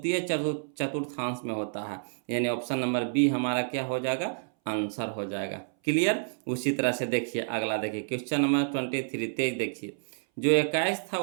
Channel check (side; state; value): left; silent; 59 dB below the other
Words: चतुर्थांश में होता है, यानी ऑप्शन नंबर बी हमारा क्या हो जाएगा आंसर हो जाएगा। क्लियर। उसी तरह से देखिए अगला देखिए क्वेश्चन नंबर 23 23 देखिए, जो 21 था